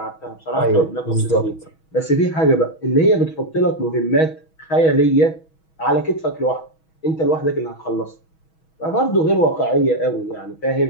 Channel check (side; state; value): right; late; 6.2 ms